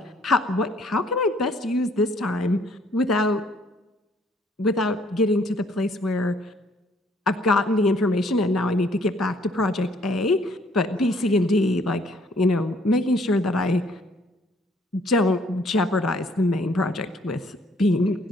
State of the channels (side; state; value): both; normal; correlation 0.63